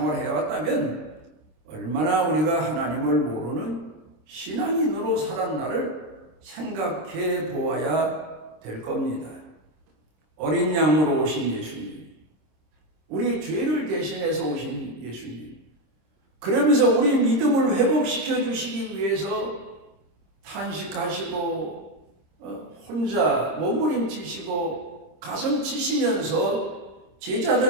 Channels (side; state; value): left; late; 26 ms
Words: 해왔다면 얼마나 우리가 하나님을 모르는 신앙인으로 살았나를 생각해 보아야 될 겁니다. 어린 양으로 오신 예수님, 우리 죄를 대신해서 오신 예수님, 그러면서 우리 믿음을 회복시켜 주시기 위해서 탄식하시고 혼자 몸부림치시고 가슴 치시면서